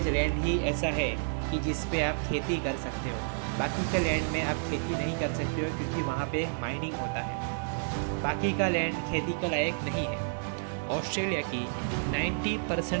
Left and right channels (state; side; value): silent; left; digital silence